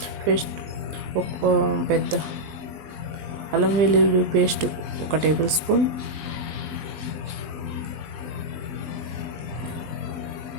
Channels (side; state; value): left; late; 20 ms